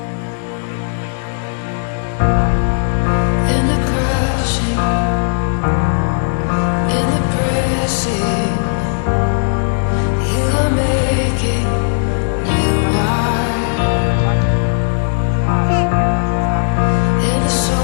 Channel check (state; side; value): silent; right; digital silence